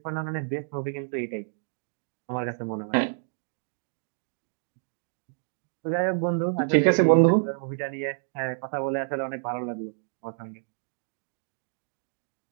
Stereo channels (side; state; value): left; silent; 59 dB below the other